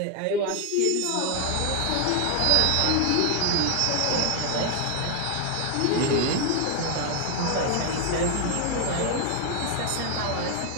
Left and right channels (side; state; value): both; different; correlation 0.00